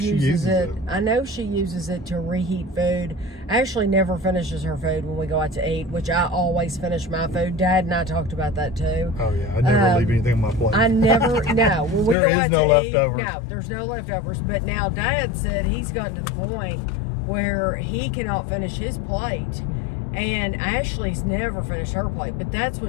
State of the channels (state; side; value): drops out; right; at 12.2 s